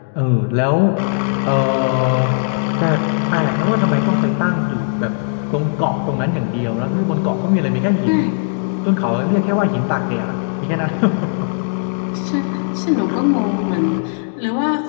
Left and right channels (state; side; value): silent; right; digital silence